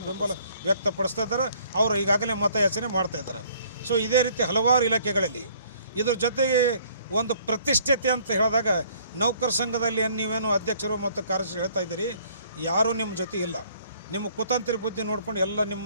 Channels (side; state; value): both; inverted; correlation -0.60